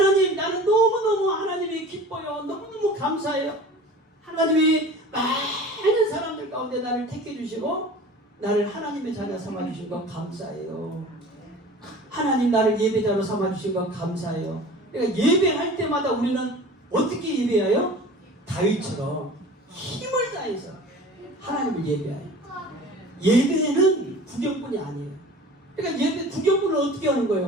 나는 너무너무 하나님이 기뻐요. 너무너무 감사해요. 하나님이 많은 사람들 가운데 나를 택해 주시고 나를 하나님의 자녀 삼아 주신 것 감사해요. 하나님 나를 예배자로 삼아 주신 것 감사해요. 그러니까 예배할 때마다 우리는 어떻게 예배해요? 다윗처럼 힘을 다해서 하나님을 예배해요. 예배는 구경꾼이 아니에요. 그러니까 예배 구경꾼은 어떻게 하는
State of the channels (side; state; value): both; normal; correlation 0.41